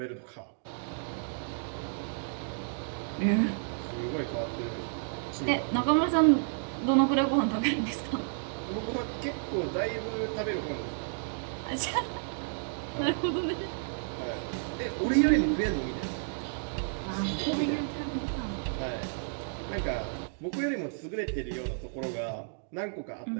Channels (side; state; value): left; silent; digital silence